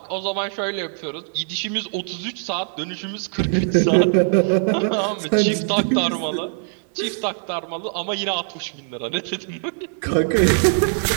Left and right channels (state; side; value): silent; left; digital silence